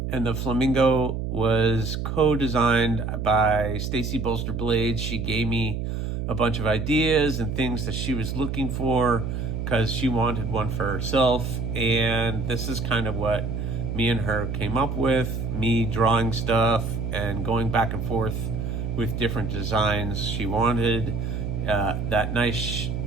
And the flamingo was co-designed by Stacy Bolster Blades. She gave me a bunch of ideas and things that she was looking for because she wanted one for herself. And this is kind of what me and her came up with, me drawing stuff and going back and forth with different designs she wanted. that nice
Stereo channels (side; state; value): right; noise; hum, 3 dB below the sound